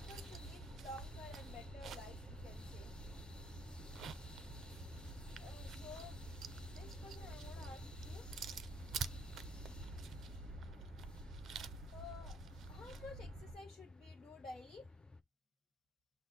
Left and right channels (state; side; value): normal; both; correlation 0.65